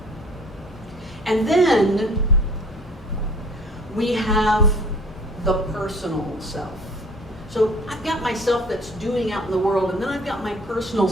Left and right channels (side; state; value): both; normal; correlation 0.51